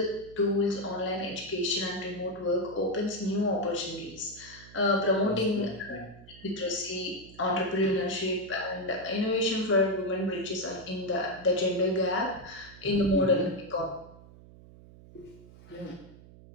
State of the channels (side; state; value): right; noise; hum, 20 dB below the sound